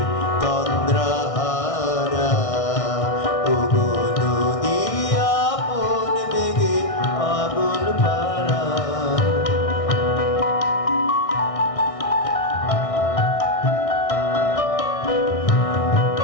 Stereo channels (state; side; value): late; right; 1.6 ms